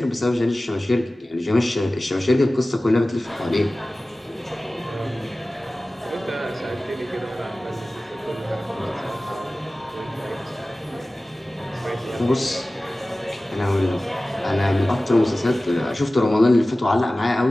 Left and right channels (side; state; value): both; normal; correlation 0.97